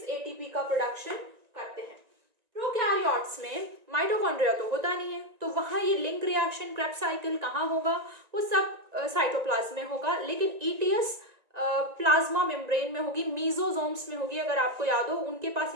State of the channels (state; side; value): late; left; 1.9 ms